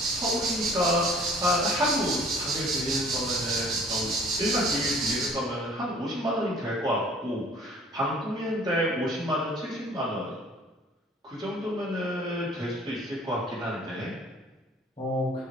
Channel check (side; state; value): both; normal; correlation 0.53